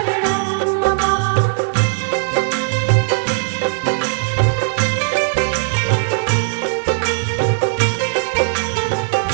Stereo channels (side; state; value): left; silent; 67 dB below the other